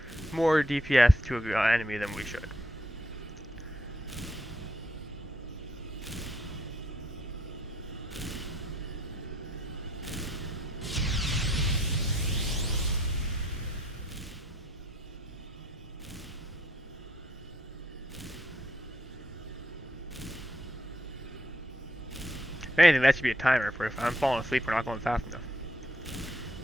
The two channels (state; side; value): normal; both; correlation 0.71